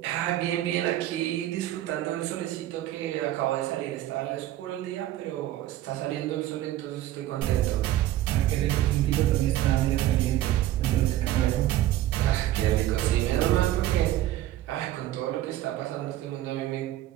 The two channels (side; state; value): left; quieter; 14.0 dB